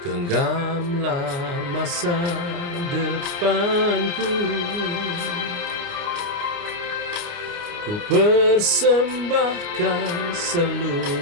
masa depanku, ku persembahkan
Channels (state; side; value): late; left; 29 ms